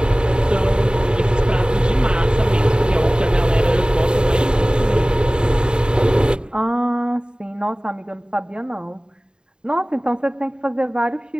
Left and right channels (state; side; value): late; left; 0.049 ms